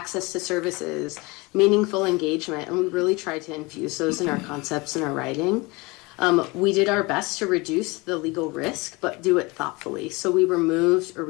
to services, meaningful engagement, and we really tried to infuse those in our concepts and our writing. We did our best to reduce the legal risk, but do it thoughtfully. So we removed or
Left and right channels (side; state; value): right; quieter; 25.1 dB